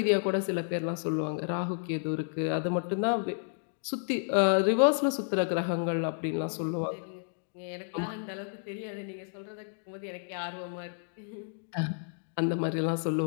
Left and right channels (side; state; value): right; silent; digital silence